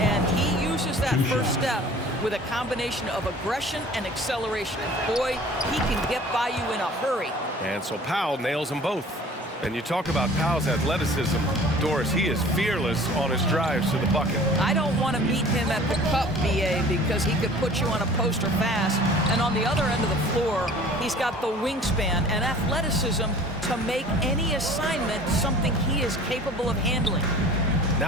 he uses that first step with a combination of aggression and acceleration. And boy, he can get by you in a hurry. And so Powell nails them both. And you talk about Powell's athleticism. Doris, he is fearless on his drives to the bucket. I don't want to meet him at the cup, BA, because he could put you on a poster fast. And on the other end of the floor, he's got the wingspan and athleticism to make any assignment something he is capable of handling.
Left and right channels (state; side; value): normal; both; correlation 0.46